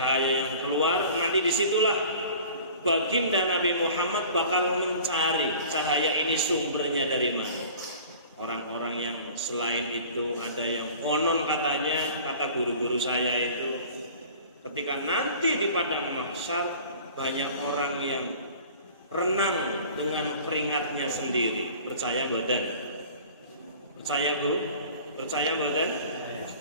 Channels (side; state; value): both; inverted; correlation -0.45